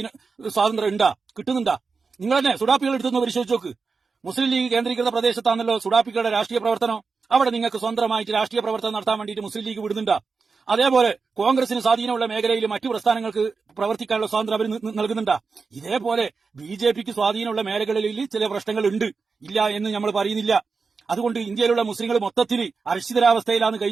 സ്വാതന്ത്ര്യം ഉണ്ടാ? കിട്ടുന്നുണ്ടാ? നിങ്ങൾ തന്നെ സുഡാപ്പികൾ എടുത്തൊന്ന് പരിശോധിച്ച് നോക്ക്. മുസ്ലിം ലീഗ് കേന്ദ്രീകൃത പ്രദേശത്താണല്ലോ സുഡാപ്പികളുടെ രാഷ്ട്രീയ പ്രവർത്തനം. അവിടെ നിങ്ങൾക്ക് സ്വന്തമായിട്ട് രാഷ്ട്രീയ പ്രവർത്തനം നടത്താൻ വേണ്ടിയിട്ട് മുസ്ലിം ലീഗ് വിടുന്നുണ്ടാ? അതേപോലെ കോൺഗ്രസിന് സ്വാധീനമുള്ള മേഖലയിൽ മറ്റു പ്രസ്ഥാനങ്ങൾക്ക് പ്രവർത്തിക്കാനുള്ള സ്വാതന്ത്ര്യം അവർ നൽകുന്നുണ്ടാ? ഇതേപോലെ ബിജെപിക്ക് സ്വാധീനമുള്ള മേഖലകളിൽ ചില പ്രശ്നങ്ങൾ ഉണ്ട്, ഇല്ല എന്ന് നമ്മൾ പറയുന്നില്ല. അതുകൊണ്ട് ഇന്ത്യയിലുള്ള മുസ്ലിങ്ങൾ മൊത്തത്തിൽ അരക്ഷിതരാവസ്ഥയിലാണ്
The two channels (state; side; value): quieter; left; 4.8 dB